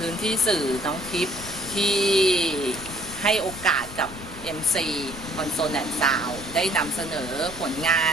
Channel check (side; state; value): left; noise; rumble, 15 dB below the sound